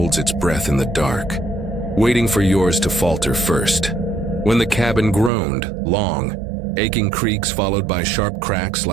its breath in the dark, waiting for yours to falter first. When the cabin groaned, long, aching creaks followed by sharp cracks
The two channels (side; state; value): left; drops out; at 5.3 s